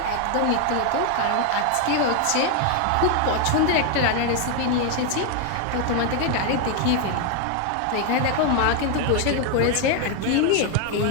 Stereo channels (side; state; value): both; different; correlation 0.01